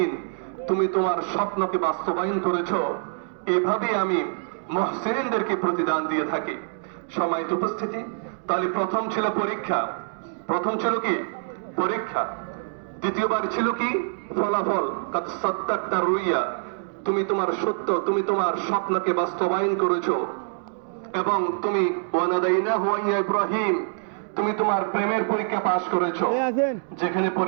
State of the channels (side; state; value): left; silent; digital silence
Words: তুমি তোমার স্বপ্নকে বাস্তবায়ন করেছো, এভাবে আমি মুহসিনদেরকে প্রতিদান দিয়ে থাকি। সম্মানিত উপস্থিতি, তাহলে প্রথম ছিল পরীক্ষা, প্রথম ছিল কি পরীক্ষা, দ্বিতীয়বার ছিল কি ফলাফল, কাদ সাদ্দাকতা রুইয়া, তুমি তোমার সত্য, তুমি তোমার স্বপ্নকে বাস্তবায়ন করেছো, এবং তুমি ওয়া নাদাইনাহু ইয়া ইব্রাহিম, তুমি তোমার প্রেমের পরীক্ষা পাশ করেছো। যেখানে